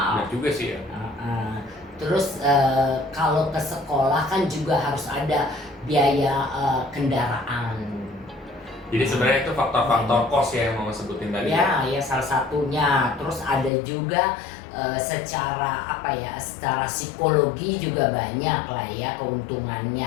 Benar juga sih ya. Terus kalau ke sekolah kan juga harus ada biaya kendaraan. Jadi sebenarnya itu faktor-faktor kos ya yang Mama sebutin tadi. Ya salah satunya. Terus ada juga secara apa ya, secara psikologi juga banyak lah ya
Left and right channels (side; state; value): right; drops out; at 13.7 s